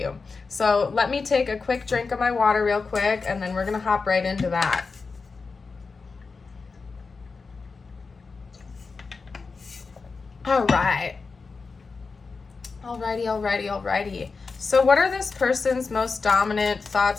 So let me take a quick drink of my water real quick, and then we're going to hop right into that. Alrighty. So what are this person's most dominant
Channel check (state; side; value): quieter; right; 4.5 dB